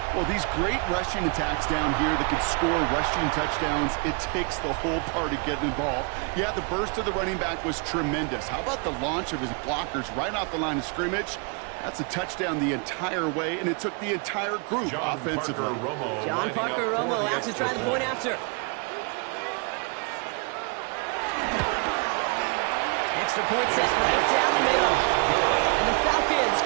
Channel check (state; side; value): quieter; left; 34.5 dB